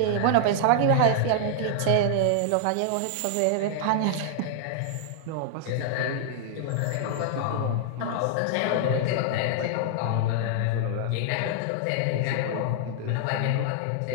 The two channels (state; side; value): different; both; correlation -0.01